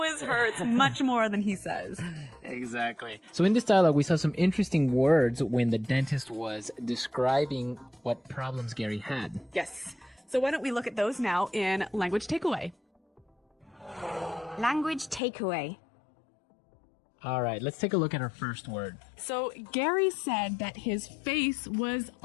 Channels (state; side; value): drops out; right; at 15.2 s